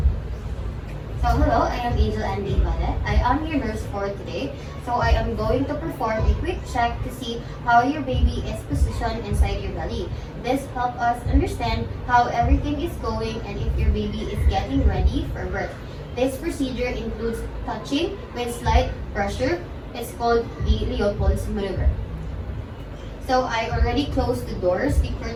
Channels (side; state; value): both; identical; correlation 1.00